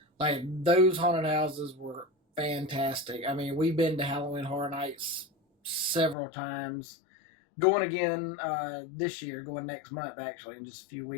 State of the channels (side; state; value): right; drops out; at 6.2 s